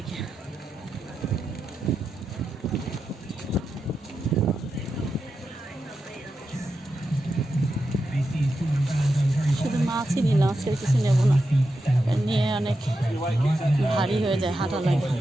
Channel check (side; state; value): both; normal; correlation 0.88